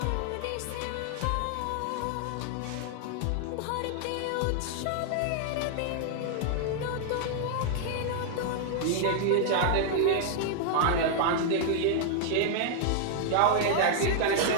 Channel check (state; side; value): different; both; correlation 0.00